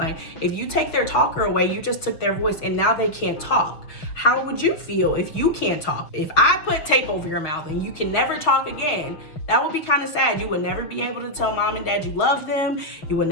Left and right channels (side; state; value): right; late; 6.0 ms